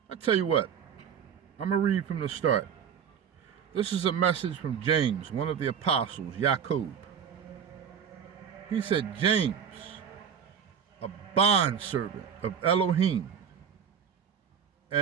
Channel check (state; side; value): quieter; left; 7.6 dB